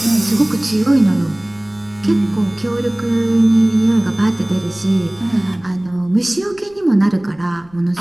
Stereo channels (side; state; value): left; noise; rumble, 28 dB below the sound